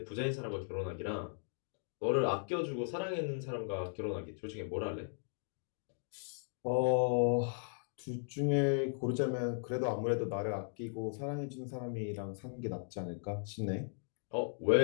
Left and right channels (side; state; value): right; silent; digital silence